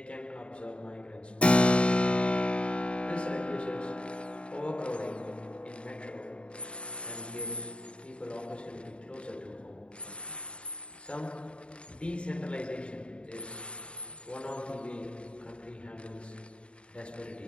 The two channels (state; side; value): late; right; 0.057 ms